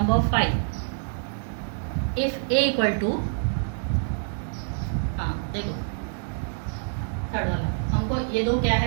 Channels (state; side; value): silent; left; digital silence